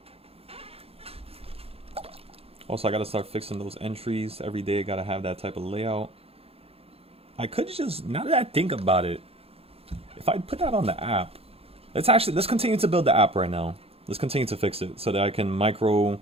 Also, I gotta start fixing those entries every day. Gotta have that type of layout. I could just, now that I think about it, if I put that on the app, let's continue to build the app right now. Let's continue to fix it so that I can like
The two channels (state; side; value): late; left; 0.28 ms